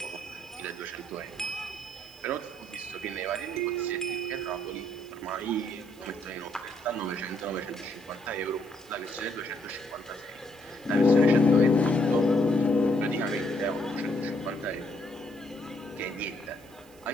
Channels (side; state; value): right; noise; hiss, 26 dB below the sound